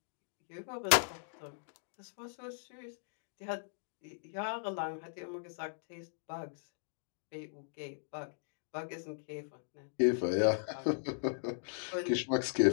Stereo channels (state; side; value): silent; right; digital silence